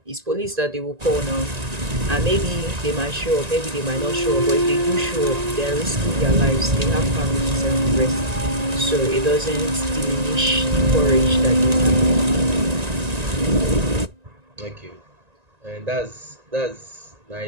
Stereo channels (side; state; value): left; late; 1.9 ms